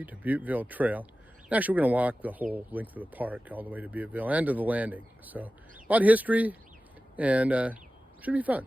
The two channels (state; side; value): normal; both; correlation 0.96